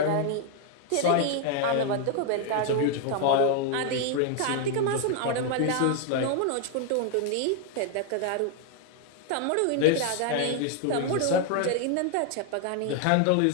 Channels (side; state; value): both; different; correlation 0.00